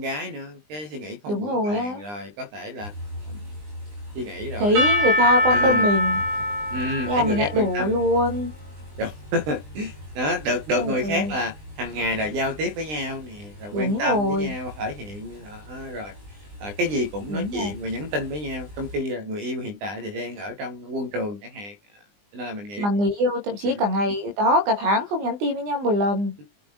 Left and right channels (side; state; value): left; late; 20 ms